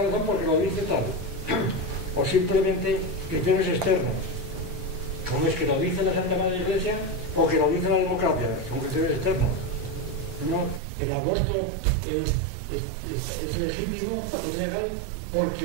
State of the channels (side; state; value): left; drops out; at 10.8 s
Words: razón porque lo dice tal, o simplemente criterios externos, como es que lo dice la Santa Madre Iglesia, o que lo dice la democracia, son criterios externos. ¿No? El aborto es legítimo, es legal, porque